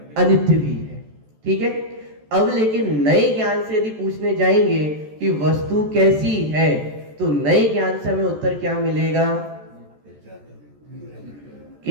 अनित्य भी है। ठीक है, अब लेकिन नए ज्ञान से यदि पूछने जाएंगे कि वस्तु कैसी है, तो नए ज्ञान से हमें उत्तर क्या मिलेगा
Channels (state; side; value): late; left; 14 ms